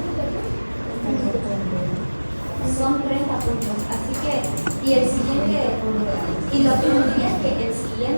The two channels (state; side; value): inverted; both; correlation -1.00